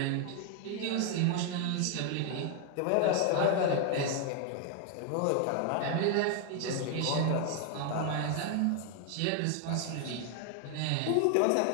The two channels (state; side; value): different; both; correlation 0.00